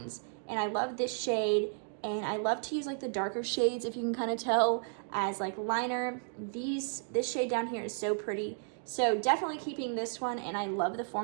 And I love this shade, and I love to use like the darker shades, if you can kind of tell, as like liner. This shade down here is so pretty. So definitely keeping this one, and I love the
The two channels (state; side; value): silent; left; digital silence